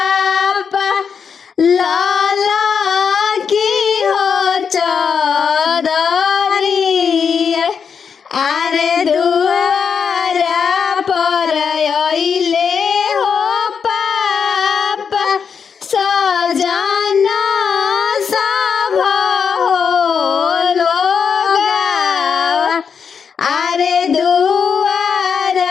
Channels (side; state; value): right; quieter; 6.5 dB